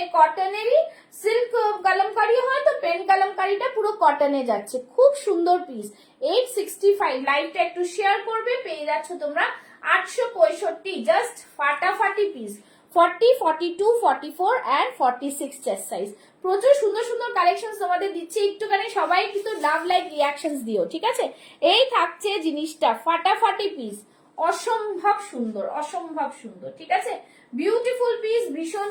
কটনেরই সিল্ক কালামকারি হয় তো পেন কালামকারিটা পুরো কটনে যাচ্ছে, খুব সুন্দর পিস। 865, লাইভটা একটু শেয়ার করবে, পেয়ে যাচ্ছ তোমরা 865, জাস্ট ফাটাফাটি পিস। 40, 42, 44 and 46 chest size. প্রচুর সুন্দর সুন্দর কালেকশন তোমাদের দিচ্ছি, একটুখানি সবাই কিন্তু লাভ লাইক রিয়াকশনস দিও, ঠিক আছে। এই থাকছে জিনিসটা ফাটাফাটি পিস, অসম্ভব সুন্দর, অসম্ভব সুন্দর, ঠিক আছে। বিউটিফুল পিস, ভীষণ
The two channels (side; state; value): both; identical; correlation 1.00